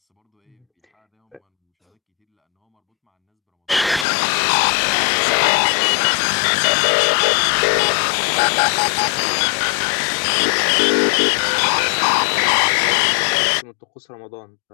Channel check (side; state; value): right; drops out; at 4.0 s